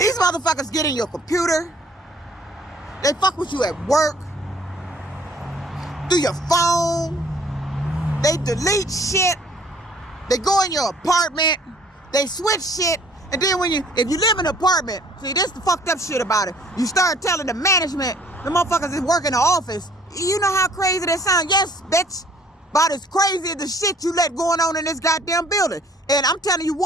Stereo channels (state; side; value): normal; both; correlation 0.57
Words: motherfuckers get in your computer. They fuck with you at work, through your phone. They delete shit. They go in your apartment. They switch shit. And then if you live in an apartment, see, this the fucked up shit about it. You start telling the management, the motherfuckers that work in the office, you know how crazy that sounds? Yes, bitch. About as crazy as the shit you let going on in this goddamn building. And I'm telling you